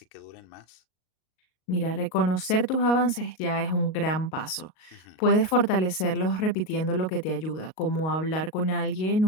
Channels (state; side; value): late; right; 38 ms